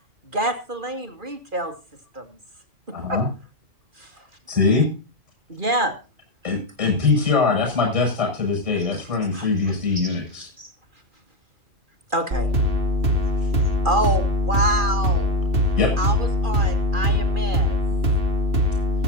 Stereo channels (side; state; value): left; late; 2.4 ms